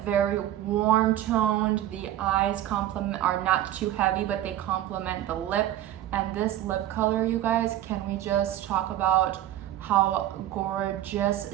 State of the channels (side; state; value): left; quieter; 12.9 dB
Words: very warm toned. The eyes are not too heavy, but they complement the lip. And this lip color, you guys, can we just talk about how gorgeous